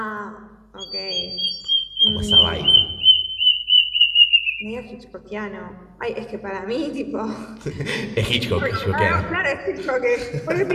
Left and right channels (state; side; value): identical; both; correlation 1.00